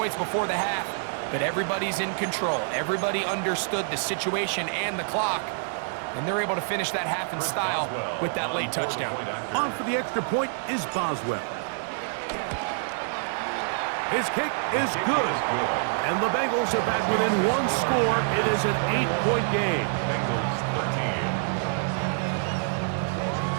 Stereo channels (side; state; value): left; silent; 60 dB below the other